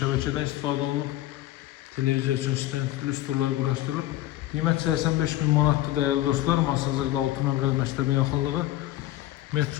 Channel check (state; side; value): quieter; right; 15.1 dB